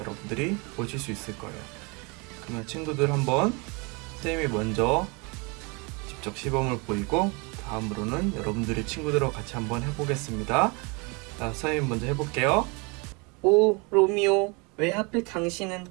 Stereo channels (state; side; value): quieter; left; 29.7 dB